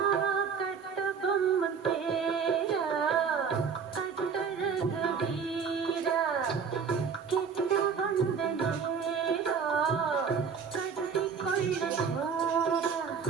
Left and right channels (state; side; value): quieter; left; 6.2 dB